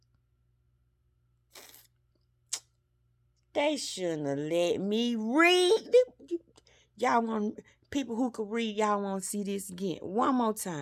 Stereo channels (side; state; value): both; identical; correlation 1.00